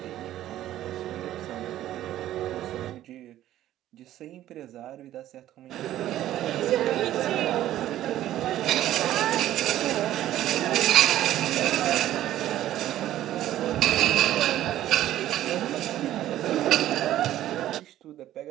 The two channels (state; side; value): quieter; left; 13.2 dB